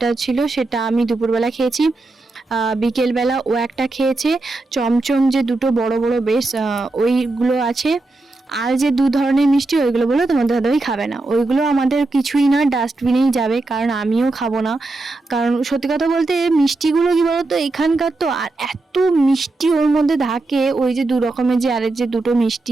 ছিল সেটা আমি দুপুরবেলা খেয়েছি, বিকেলবেলা ও একটা খেয়েছে। চমচম যে দুটো বড় বড় বেশ ওইগুলো আছে। আর যে দু ধরনের মিষ্টি ওইগুলো বলো তোমাদের দাদাভাই খাবে না, ওইগুলো আমাদের কিছুই না, ডাস্টবিনেই যাবে, কারণ আমিও খাবো না। কারণ সত্যি কথা বলতে মিষ্টিগুলো কি বলতো এখানকার তো, আর এত মিষ্টি ওর মধ্যে থাকে, ওই যে দু রকমের যে আরেক যে দুটো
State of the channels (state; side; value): quieter; left; 3.1 dB